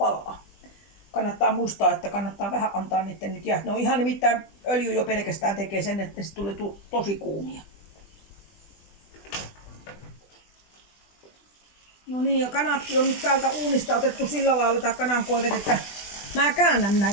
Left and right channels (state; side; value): late; right; 20 ms